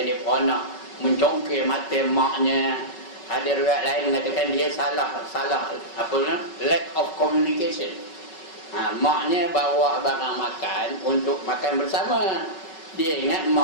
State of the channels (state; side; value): late; right; 5.3 ms